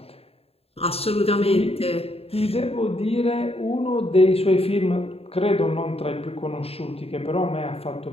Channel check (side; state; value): right; late; 0.29 ms